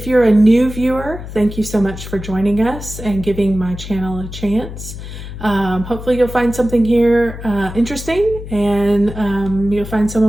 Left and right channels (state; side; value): noise; left; hum, 11 dB below the sound